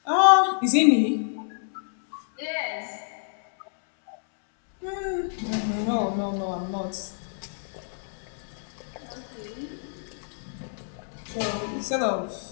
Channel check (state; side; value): silent; right; 60 dB below the other